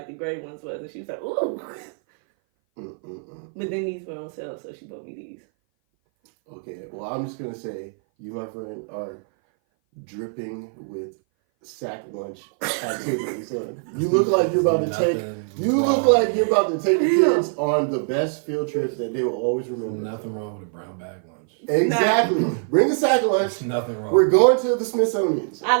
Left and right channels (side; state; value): left; silent; 58 dB below the other